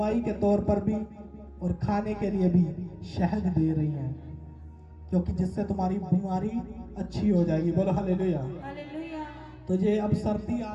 के तौर पर भी और खाने के लिए भी शहद दे रही हैं, क्योंकि जिससे तुम्हारी बीमारी अच्छी हो जाएगी। बोलो हालेलुया। हालेलुया। तो ये अब सर्दी आ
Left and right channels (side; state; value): both; identical; correlation 1.00